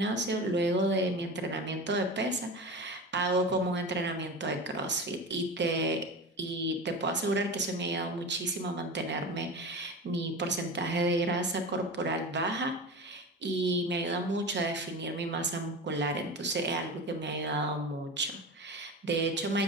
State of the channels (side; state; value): both; normal; correlation 0.29